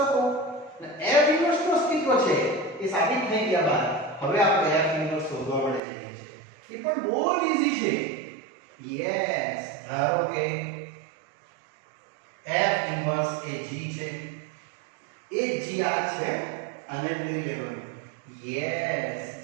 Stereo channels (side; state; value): left; drops out; at 5.8 s